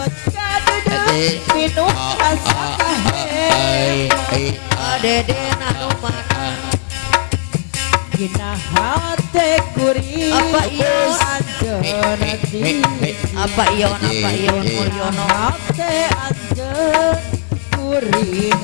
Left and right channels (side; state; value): right; silent; 65 dB below the other